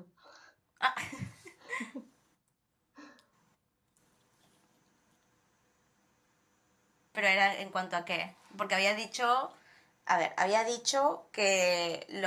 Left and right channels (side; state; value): both; identical; correlation 1.00